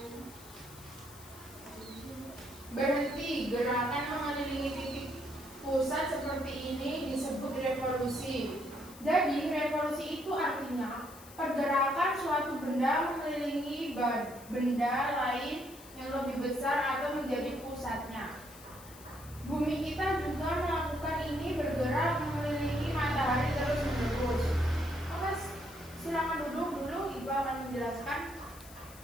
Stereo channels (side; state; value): left; noise; hiss, 19 dB below the sound